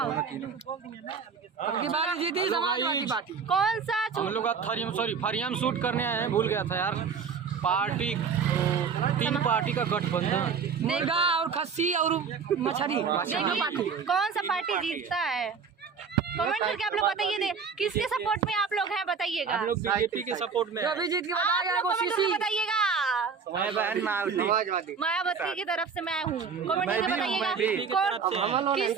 बारी जीती समाजवादी पार्टी। कौन सा हम लोग फरिया में शूट करने आए हैं, भूल गया था यार। पार्टी 3 पार्टी का गठबंधन, मुर्गा और खस्सी और मछली। कौन सा पार्टी जीतता है? कमेंट करके आप लोग बताइए, किसके सपोर्ट में आप लोग हैं बताइएगा। हम लोग बीजेपी के सपोर्ट में आप लोग कमेंट करके बताइएगा। मैं बहन मायावती की तरफ से मैं हूँ, कमेंट करके बताइएगा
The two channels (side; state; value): left; quieter; 5.9 dB